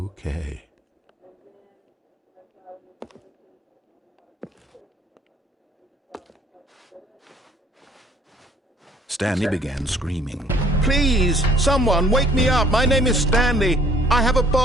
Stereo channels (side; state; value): both; normal; correlation 0.58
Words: Stanley began screaming. Please, someone, wake me up. My name is Stanley. I have a